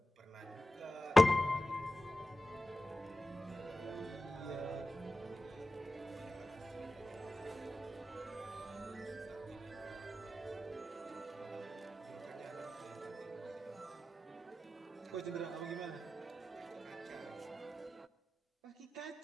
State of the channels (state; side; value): normal; both; correlation 0.94